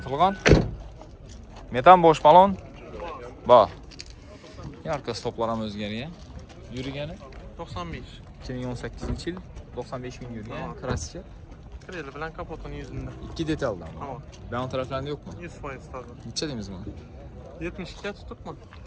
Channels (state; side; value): identical; both; correlation 1.00